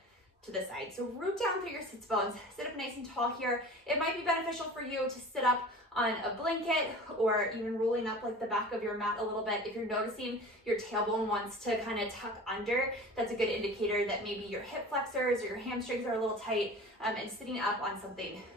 to the side. So root down through your sits bones, sit up nice and tall here. It might be beneficial for you to sit up on a blanket or even rolling up like the back of your mat a little bit. If you're noticing your tailbone wants to kind of tuck under, that's a good indicator that maybe your hip flexors or your hamstrings are a little tight, and sitting up on something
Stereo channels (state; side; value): normal; both; correlation 0.39